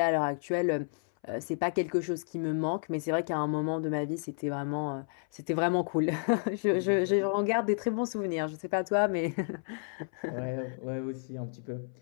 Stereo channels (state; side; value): silent; right; 57 dB below the other